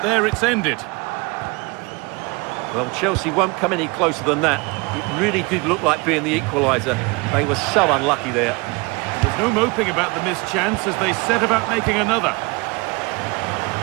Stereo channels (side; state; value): left; quieter; 26.6 dB